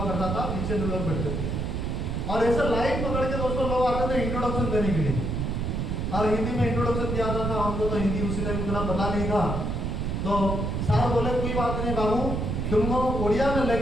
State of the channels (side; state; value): right; noise; rumble, 1 dB below the sound